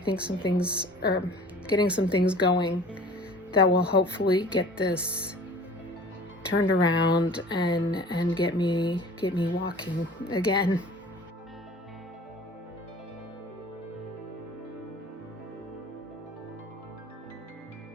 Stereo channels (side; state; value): both; normal; correlation 0.45